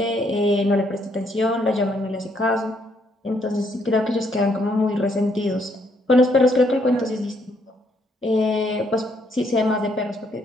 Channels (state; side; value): normal; both; correlation 0.71